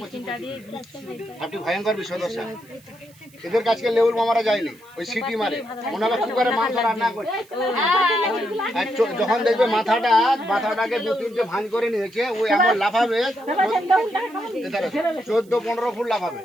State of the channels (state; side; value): noise; right; hiss, 27 dB below the sound